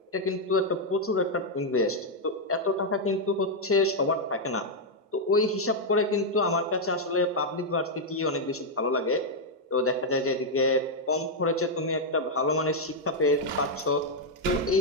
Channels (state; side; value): normal; both; correlation -0.02